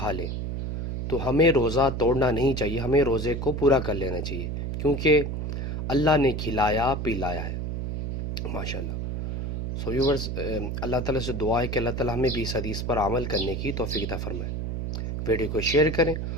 لیں تو ہمیں روزہ توڑنا نہیں چاہیے، ہمیں روزے کو پورا کر لینا چاہیے، کیونکہ اللہ نے کھلایا پلایا ہے۔ ماشاءاللہ۔ ویورز، اللہ تعالیٰ سے دعا ہے کہ اللہ تعالیٰ ہمیں بھی اس حدیث پر عمل کرنے کی توفیق عطا فرمائے۔ ویڈیو کو شیئر کریں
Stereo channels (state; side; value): noise; right; hum, 3 dB below the sound